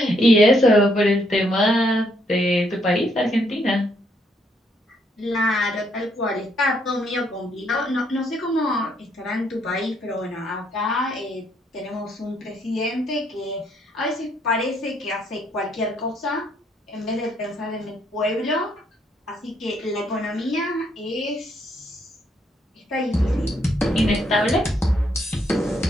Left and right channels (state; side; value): normal; both; correlation 0.72